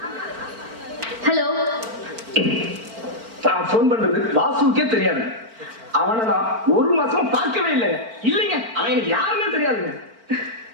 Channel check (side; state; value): left; late; 4.4 ms